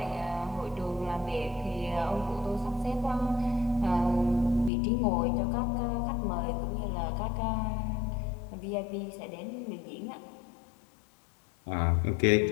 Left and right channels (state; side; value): drops out; right; at 4.7 s